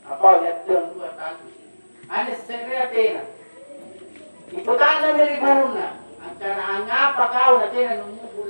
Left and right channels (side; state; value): both; inverted; correlation -1.00